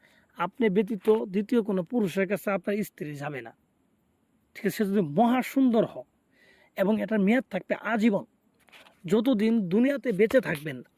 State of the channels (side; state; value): both; identical; correlation 1.00